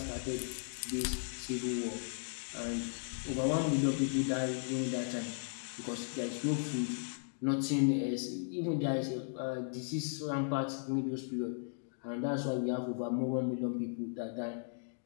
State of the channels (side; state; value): right; silent; digital silence